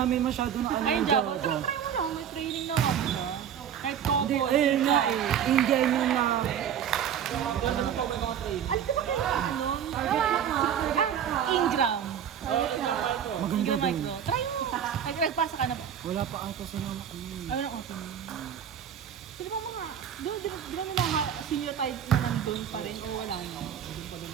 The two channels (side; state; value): left; quieter; 8.8 dB